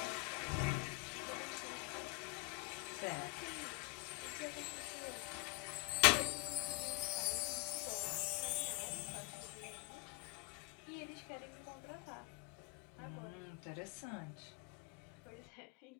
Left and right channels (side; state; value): right; quieter; 24.4 dB